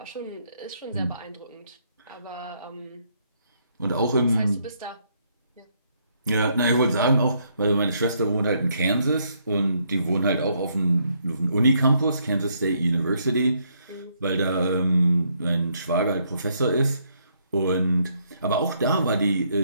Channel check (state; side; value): inverted; both; correlation -0.72